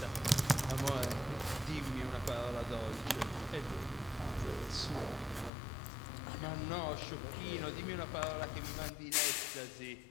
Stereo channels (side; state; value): right; drops out; at 5.5 s